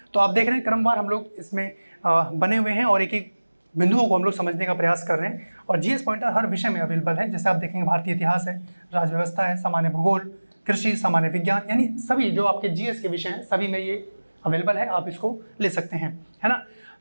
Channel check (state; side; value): inverted; both; correlation -1.00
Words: तो आप देख रहे हैं क्रमवार हम लोग इसमें बने हुए हैं और एक एक बिंदुओं को हम लोग समझने का प्रयास कर रहे हैं। और जीएस पॉइंटर हर विषय में अवेलेबल है। जैसे आप देखेंगे भारतीय इतिहास है, राज्य व्यवस्था है, सामान्य भूगोल, कृषि, सामान्य विज्ञान, यानी सभी जो आपके जीएस के विषय हैं सभी में ये अवेलेबल है। आप इसको ले सकते हैं, है ना।